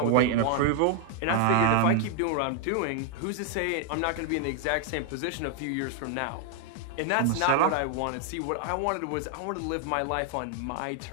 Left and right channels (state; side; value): different; both; correlation 0.00